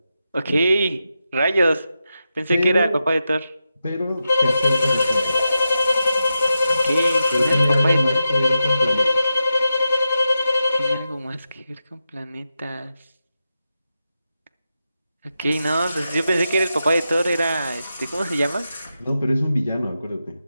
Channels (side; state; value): both; inverted; correlation -0.89